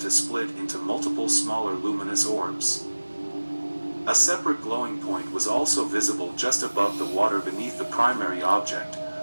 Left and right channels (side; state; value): both; inverted; correlation -1.00